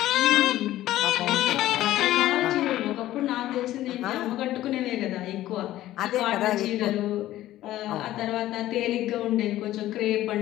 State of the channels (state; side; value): quieter; right; 14.5 dB